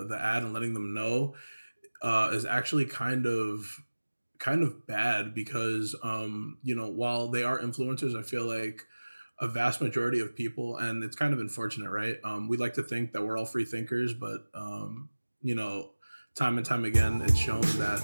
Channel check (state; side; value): inverted; both; correlation -1.00